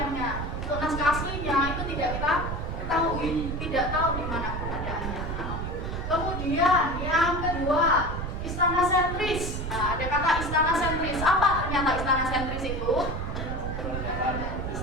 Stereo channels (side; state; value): right; noise; rumble, 4 dB below the sound